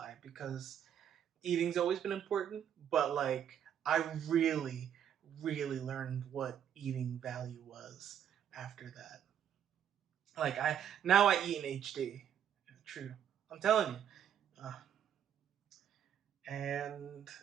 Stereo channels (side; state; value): left; quieter; 9.4 dB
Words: because eating's always been important, but like I really, really learned what eating value was after that. Like I eat in HD. True, I'm telling you, and